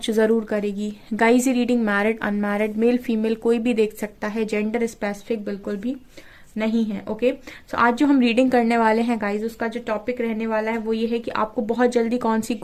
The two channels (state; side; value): identical; both; correlation 1.00